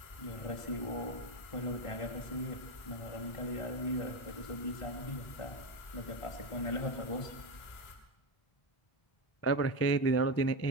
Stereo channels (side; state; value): right; late; 1.5 ms